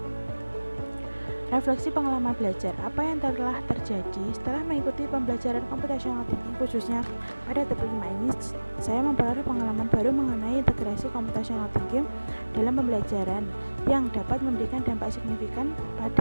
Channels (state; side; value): inverted; both; correlation -1.00